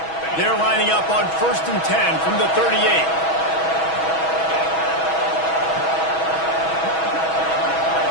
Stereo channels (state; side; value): late; right; 6.2 ms